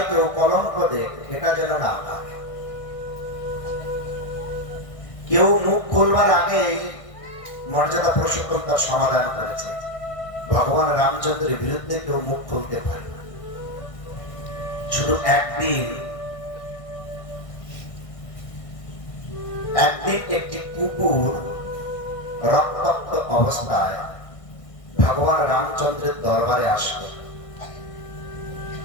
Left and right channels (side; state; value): right; late; 1.6 ms